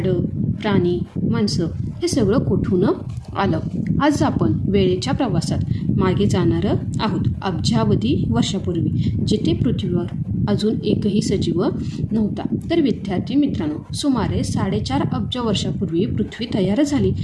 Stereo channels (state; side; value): identical; both; correlation 1.00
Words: प्राणी, माणसं हे सगळं कुठून आलं? आज आपण वेळेच्या प्रवासात मागे जाणार आहोत, अब्जावधी वर्षापूर्वी, जिथे पृथ्वीवर अजून एकही सजीव नव्हता. तर विद्यार्थी मित्रांनो, सुमारे 4.5 अब्ज वर्षापूर्वी पृथ्वी तयार झाली.